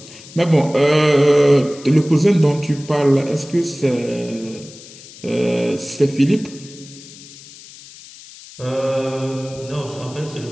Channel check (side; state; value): left; noise; hiss, 19 dB below the sound